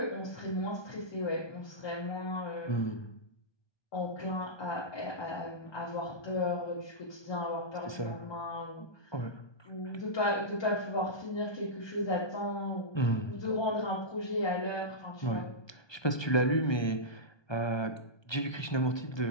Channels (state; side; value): late; right; 1.2 ms